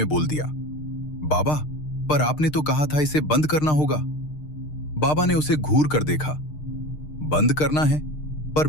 बोल दिया, बाबा, पर आपने तो कहा था इसे बंद करना होगा। बाबा ने उसे घूर कर देखा। बंद करना है, पर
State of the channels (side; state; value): right; late; 6.6 ms